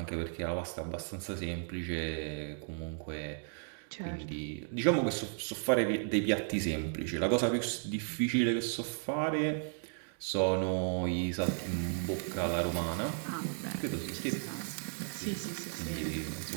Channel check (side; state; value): left; silent; 55 dB below the other